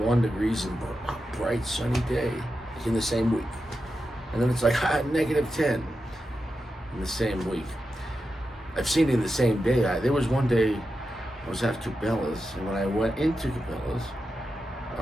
degrees and a bright sunny day in the same week. And then it's like negative 10 in the same week. I've seen it in the same day. There was one day I was at Cabela's, and when I went into Cabela's,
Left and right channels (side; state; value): both; normal; correlation 0.89